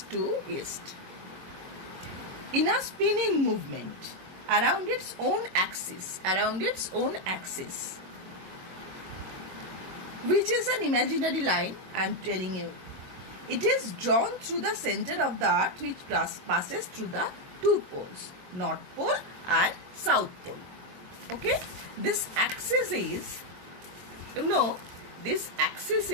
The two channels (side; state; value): left; late; 22 ms